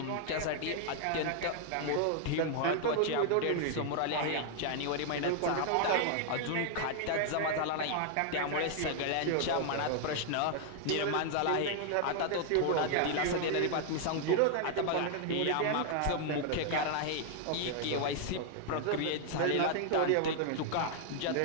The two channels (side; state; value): both; different; correlation 0.00